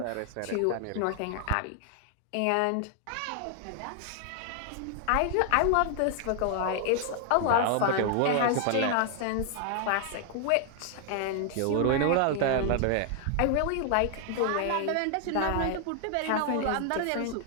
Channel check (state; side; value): different; both; correlation 0.00